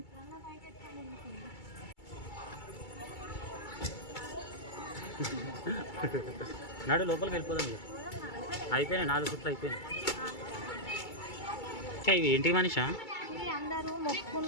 నాడు లోపలికి వెళ్ళిపోదాం. అయిపోయినాయి 4 చుట్లు అయిపోయినాయి. ఇవి ఏంటి మనిషా?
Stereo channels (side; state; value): right; late; 2.3 ms